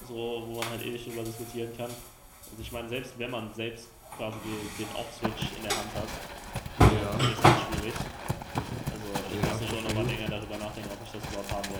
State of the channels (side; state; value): both; identical; correlation 1.00